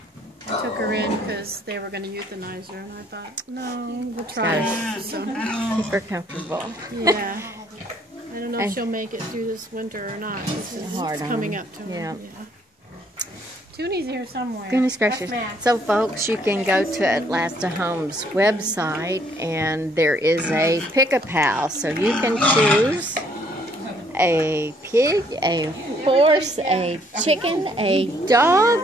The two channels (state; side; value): normal; both; correlation 0.65